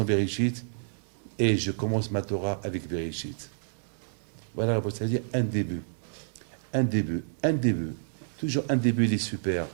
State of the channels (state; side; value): silent; left; digital silence